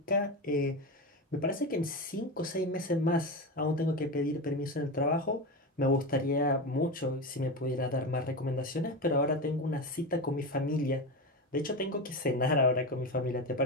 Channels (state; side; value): normal; both; correlation 0.19